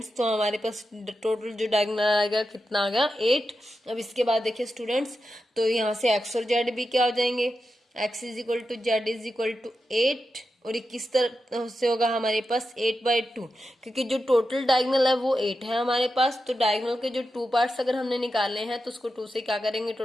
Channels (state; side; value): normal; both; correlation 0.89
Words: तो हमारे पास टोटल जो डायगोनल आएगा कितना आ गया 8। अब इसके बाद देखिए स्टूडेंट्स, तो यहाँ से x और z भी क्या हो जाएंगे, x is equal to z is equal to 8, और ये किस तरह से होगा हमारे पास 8/2, क्योंकि जो टोटल डायगोनल है वो 8 है हमारे पास। तो डायगोनल के जो 2 पार्ट्स अगर हमने निकाले हैं तो उसको 2 से क्या करेंगे,